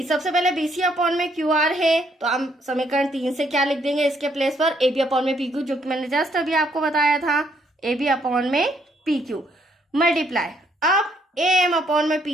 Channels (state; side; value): normal; both; correlation 0.70